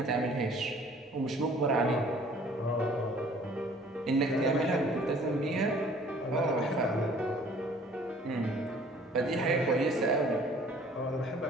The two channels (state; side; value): normal; both; correlation 0.54